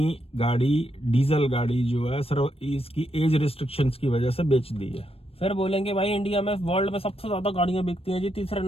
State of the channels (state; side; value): late; right; 0.28 ms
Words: गाड़ी, डीजल गाड़ी जो है सिर्फ इसकी एज रिस्ट्रिक्शंस की वजह से बेच दी है। फिर बोलेंगे भाई इंडिया में, वर्ल्ड में सबसे ज्यादा गाड़ियां बिकती हैं जी, तीसरे